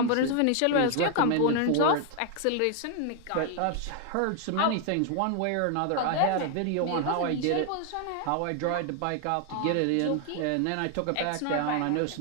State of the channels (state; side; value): different; both; correlation 0.00